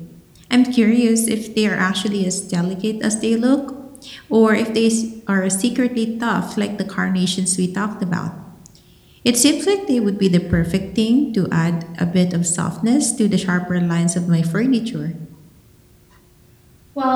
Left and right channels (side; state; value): both; identical; correlation 1.00